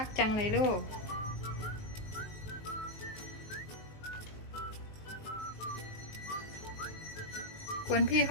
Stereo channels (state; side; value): late; right; 19 ms